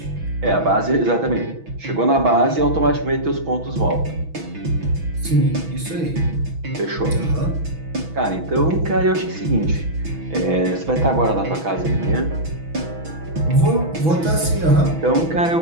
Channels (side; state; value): left; late; 6.1 ms